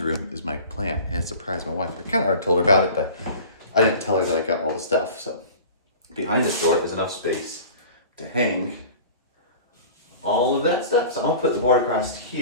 room is my plan, and surprise my wife. I kind of already told her about it, but I didn't tell her that I got all the stuff. So behind this door is enough space to hang all of that stuff. So I'm gonna put the board across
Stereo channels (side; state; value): both; inverted; correlation -0.40